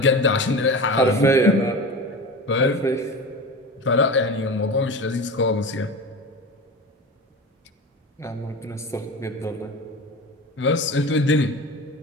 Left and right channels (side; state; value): both; normal; correlation 0.30